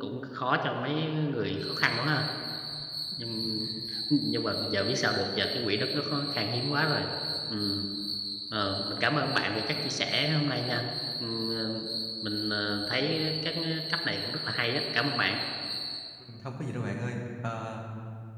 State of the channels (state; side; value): identical; both; correlation 1.00